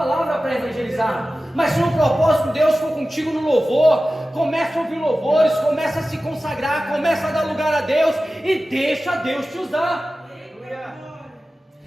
para evangelizar. Mas se o propósito Deus for contigo no louvor, começa a ouvir louvores, começa a se consagrar, começa a dar lugar a Deus e deixa Deus te usar.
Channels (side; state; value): both; normal; correlation 0.95